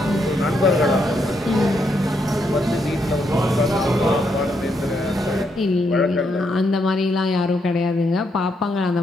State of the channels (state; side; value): normal; both; correlation 0.77